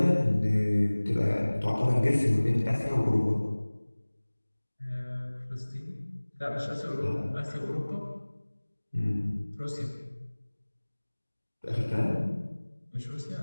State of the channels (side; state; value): both; inverted; correlation -1.00